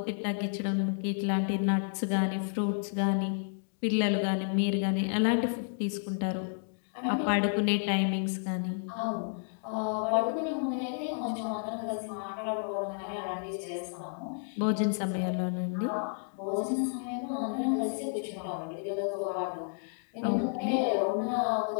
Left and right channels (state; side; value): silent; right; digital silence